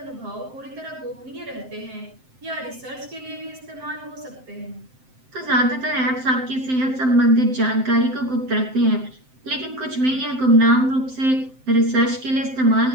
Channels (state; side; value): late; left; 7.7 ms